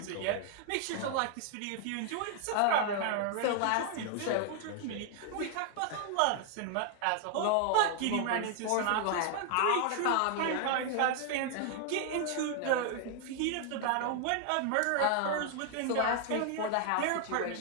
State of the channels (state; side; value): different; both; correlation 0.00